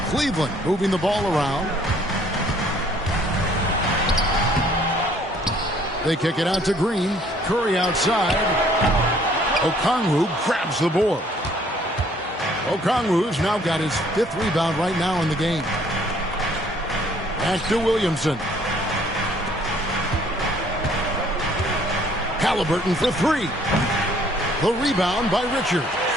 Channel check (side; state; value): both; normal; correlation 0.60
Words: Cleveland moving the ball around. They kick it out to Green. Curry outside. Okongwu grabs the board. Okongwu's now got his 5th rebound right now in the game. Back to Williamson. Halliburton for 3. The rebound by Richards.